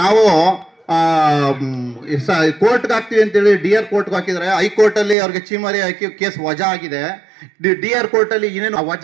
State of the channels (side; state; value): left; drops out; at 5.2 s